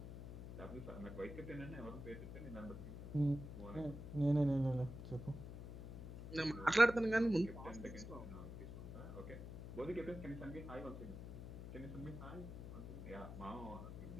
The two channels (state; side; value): noise; left; hum, 10 dB below the sound